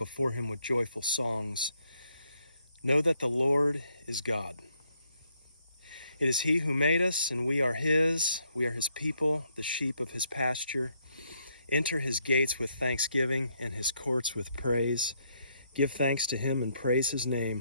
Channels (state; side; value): inverted; both; correlation -0.73